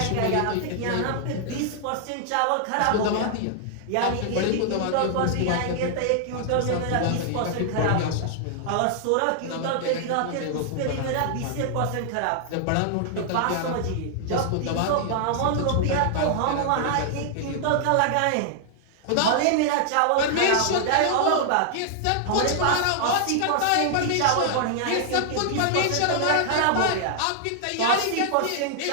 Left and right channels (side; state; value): both; different; correlation -0.01